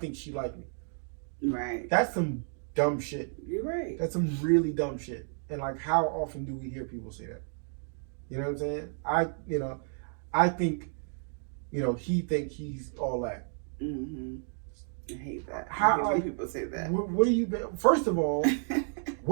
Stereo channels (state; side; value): silent; left; 57 dB below the other